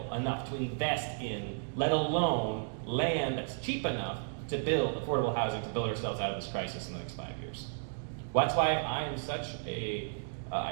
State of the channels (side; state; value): left; silent; digital silence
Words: enough to invest in, let alone land that's cheap enough to build affordable housing to build ourselves out of this crisis in the next 5 years. Well, that's why I am such